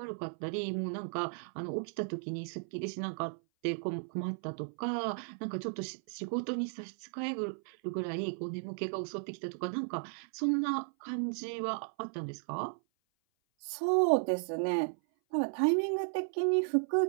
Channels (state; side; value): silent; left; 54 dB below the other